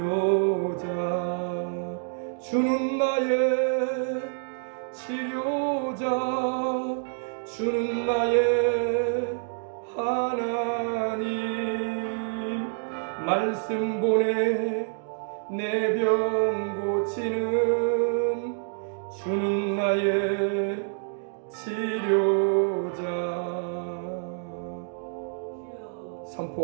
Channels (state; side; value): silent; left; digital silence